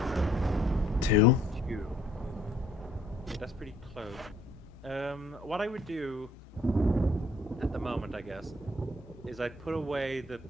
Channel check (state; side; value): normal; both; correlation 0.62